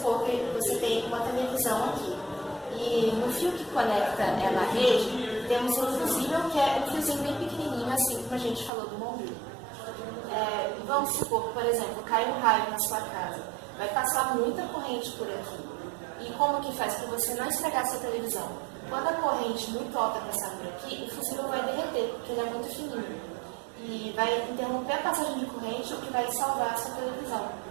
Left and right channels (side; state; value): left; drops out; at 8.7 s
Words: que você tem uma televisão aqui e no fio que conecta ela à rede, temos um fusível que é um fiozinho bem pequenininho, assim como a gente falou do bombril. Vamos supor que, por exemplo, cai um raio na sua casa, vai passar muita corrente por aqui. E como que faz para você não estragar a sua televisão? Quando a corrente muito alta passar por aqui, o fusível vai derreter, porque ele é muito fininho. E vai interromper a passagem de corrente, o que vai salvar a sua televisão.